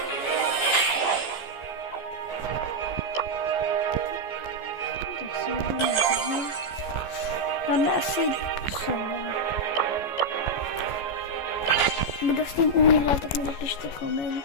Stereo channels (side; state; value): right; late; 14 ms